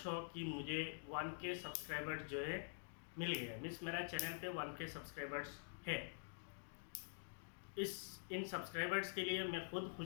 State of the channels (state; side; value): silent; right; digital silence